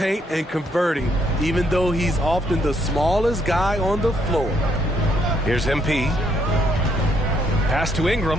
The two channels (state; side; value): normal; both; correlation 0.72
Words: and converting, even though he's often the smallest guy on the floor. Here's MP. Pass to